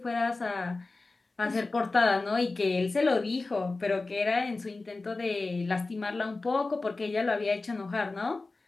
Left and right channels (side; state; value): right; quieter; 3.5 dB